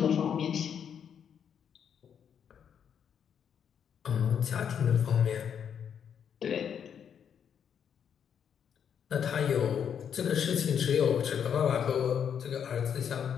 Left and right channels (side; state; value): right; quieter; 8.0 dB